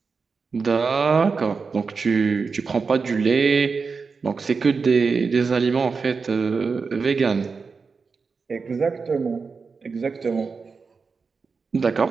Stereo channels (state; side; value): quieter; left; 4.9 dB